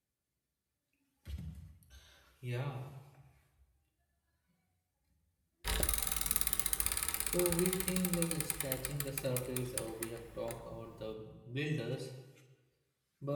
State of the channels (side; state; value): both; identical; correlation 1.00